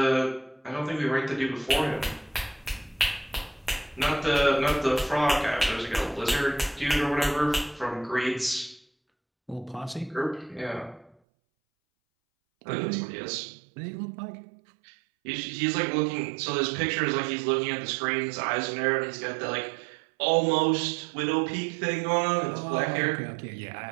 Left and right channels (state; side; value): drops out; left; at 11.2 s